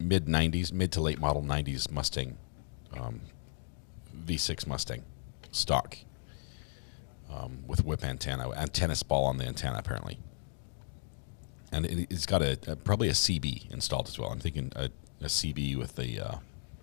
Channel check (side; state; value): right; silent; digital silence